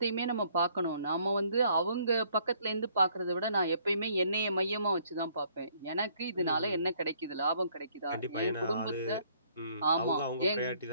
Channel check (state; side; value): inverted; both; correlation -0.64